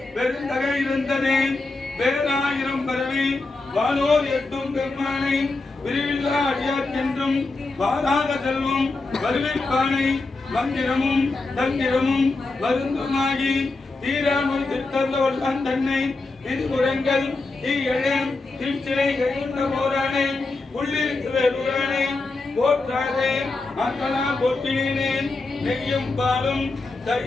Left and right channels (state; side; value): quieter; right; 3.4 dB